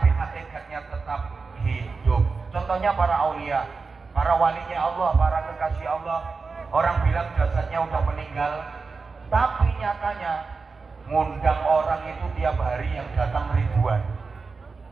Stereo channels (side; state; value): left; quieter; 4.5 dB